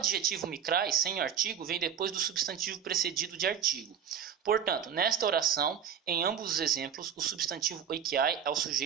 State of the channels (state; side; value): quieter; left; 8.3 dB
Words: Mikrai, sem artigo, vem depois do substantivo precedido de artigo. Portanto, nesta oração, em ambos os exemplos, o substantivo Oikiai é o